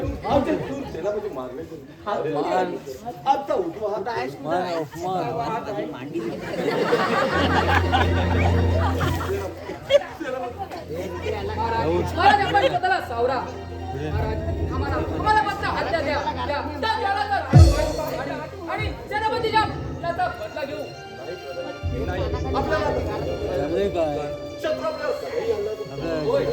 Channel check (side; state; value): both; identical; correlation 1.00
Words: आमचे दूर सेनापती मारले आमचा उठवा हात आहे महाराज आपण स्वतःला सावरा. महाराज आम्हाला मात्र हत्या द्या आणि सेनापतीच्या त्याचा बदला घेऊ. क्षत्रपला सगळी आणलं. होय